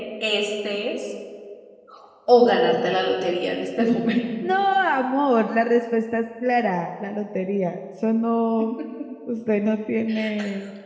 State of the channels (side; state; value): both; identical; correlation 1.00